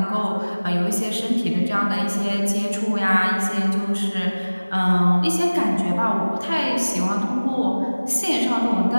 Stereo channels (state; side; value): inverted; both; correlation -1.00